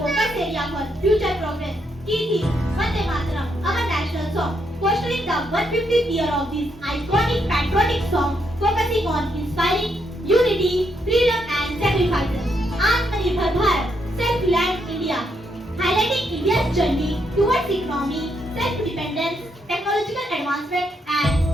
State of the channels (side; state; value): both; normal; correlation 0.77